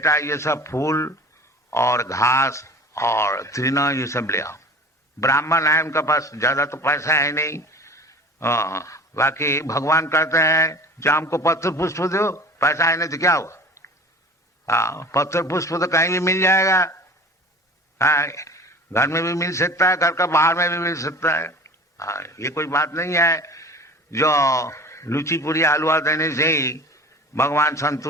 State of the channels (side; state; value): both; normal; correlation 0.41